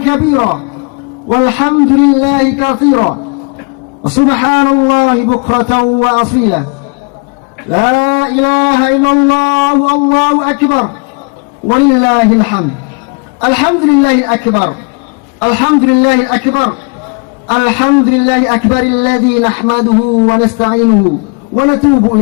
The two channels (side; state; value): right; quieter; 34.7 dB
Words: kabira walhamdulillahi katsira. Subhanallahi bukratan wa asila. La ilaha illallah, Allahu Akbar walillahil hamd. Alhamdulillahil akbar. Alhamdulillahil akbar. Alhamdulillahil akbar alladzi nahmaduhu wa nasta'inuhu wa natubu